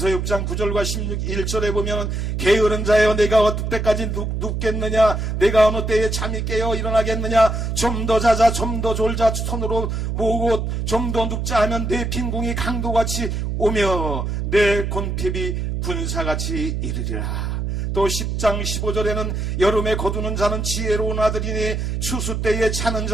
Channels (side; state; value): right; noise; hum, 2 dB below the sound